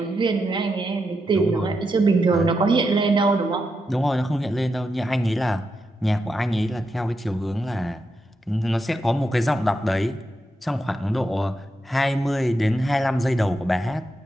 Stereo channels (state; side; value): normal; both; correlation 0.85